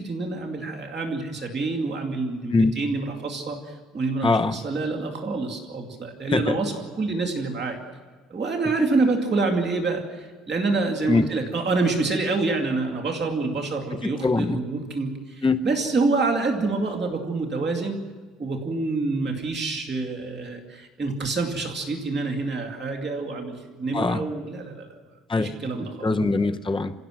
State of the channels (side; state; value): both; normal; correlation 0.69